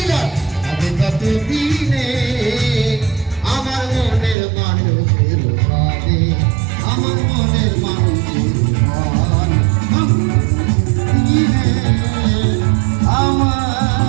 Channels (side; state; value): left; drops out; at 4.4 s